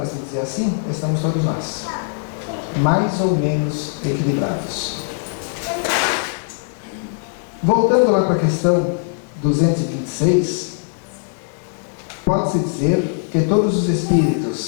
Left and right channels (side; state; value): right; silent; digital silence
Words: se dizer assim, estamos todos nós, mais ou menos equilibrados. Voltando lá para a questão 226, pode-se dizer que todos os